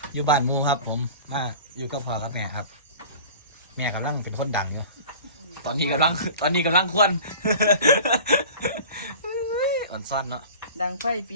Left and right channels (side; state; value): both; inverted; correlation -0.40